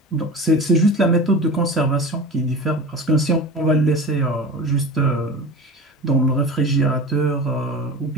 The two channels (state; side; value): normal; both; correlation 0.32